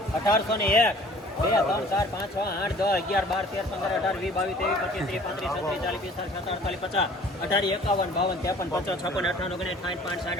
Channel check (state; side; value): normal; both; correlation 0.51